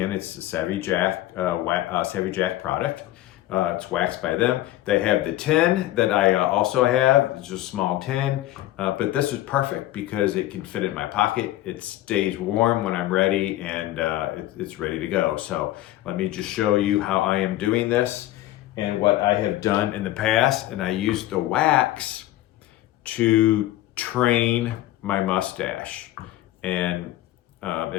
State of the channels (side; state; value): right; quieter; 15.2 dB